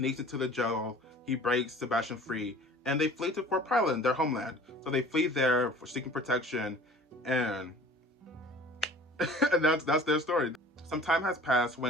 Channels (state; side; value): normal; both; correlation 0.46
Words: into the jail. He breaks Sebastian free, and they flee to Fort Pyland, their homeland. So they flee there for seeking protection, and that's their story. Some time has passed